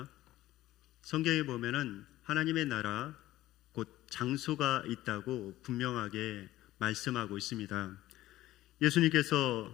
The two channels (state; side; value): quieter; right; 15.5 dB